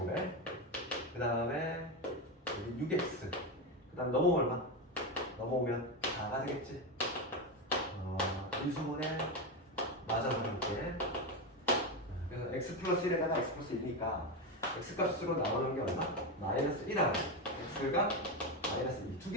그 다음에 6x 그 다음 넘어오면 얼마? 넘어오면 4가 되겠지. 인수분해 맞아서 볼게. 그래서 x 플러스 1에다가 x 플러스 1이니까 x 값으로 나오는 게 얼마? 마이너스 1하고 x가 마이너스 2. 두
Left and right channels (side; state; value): both; normal; correlation 0.13